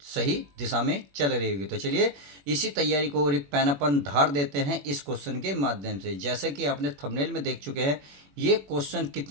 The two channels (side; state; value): left; late; 21 ms